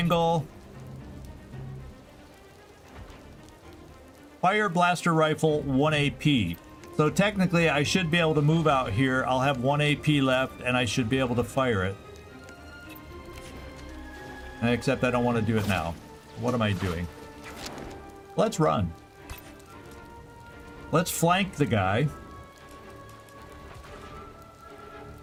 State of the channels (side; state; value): both; identical; correlation 1.00